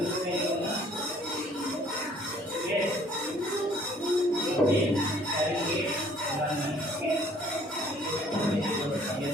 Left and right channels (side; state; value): both; normal; correlation 0.58